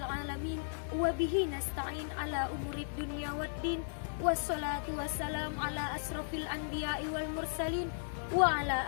alamin wa bihi nasta'in ala umurid dunya waddin wassalatu wassalam ala asrofil anbiya'i wal mursalin wa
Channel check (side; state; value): right; silent; digital silence